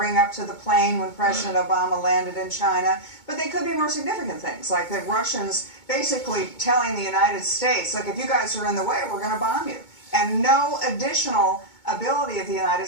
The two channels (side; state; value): right; late; 2.2 ms